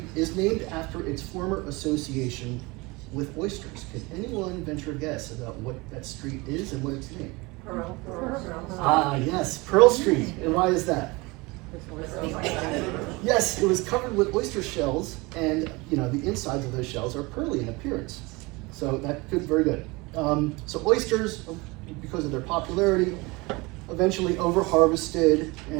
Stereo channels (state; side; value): quieter; left; 24.5 dB